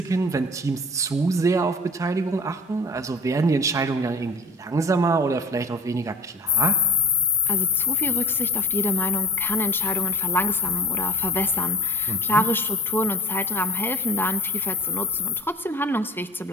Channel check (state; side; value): normal; both; correlation 0.41